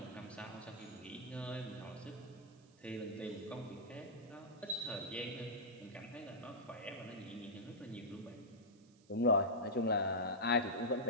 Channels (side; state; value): right; noise; hiss, 29 dB below the sound